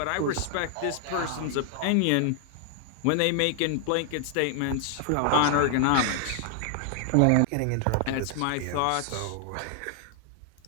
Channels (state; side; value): different; both; correlation 0.00